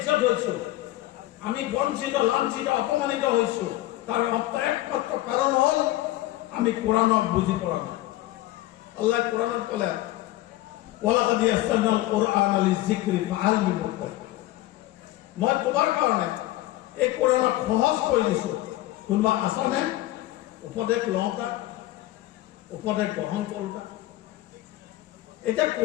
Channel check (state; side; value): quieter; right; 16.5 dB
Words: হয়েছো, আমি বঞ্চিত লাঞ্ছিত অপমানিত হয়েছো, তার একমাত্র কারণ হল আমি কোরআনক বুঝি পড়া না। আল্লাহ কোরআনত কলে ওয়ালাকাদ ইয়াসসারনাল কুরআনা লিযিকরি ফাহাল মিন মুদ্দাকির, মই তোমার কারণে এই কোরআনক সহজ করে দিছো, কোনোবা আছনে উপদেশ লওঁতা, উপদেশ গ্রহণ কৰোঁতা? এতিয়া